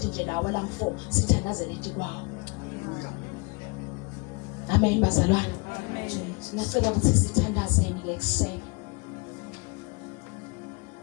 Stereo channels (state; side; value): quieter; right; 29.0 dB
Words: nje lawa lam 4 sithandazele ithi kwawo. Amen bazalwane. Amen. Ngicela ukuthi sithandazeni ke ekseni.